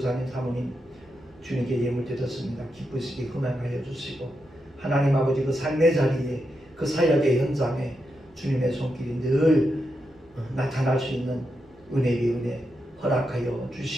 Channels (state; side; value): noise; right; rumble, 29 dB below the sound